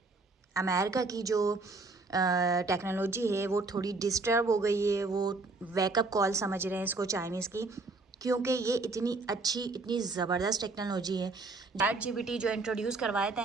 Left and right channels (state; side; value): quieter; left; 3.6 dB